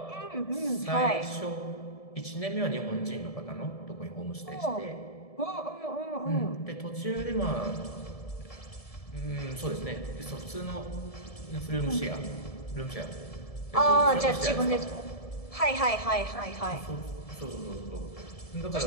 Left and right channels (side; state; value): right; late; 1.7 ms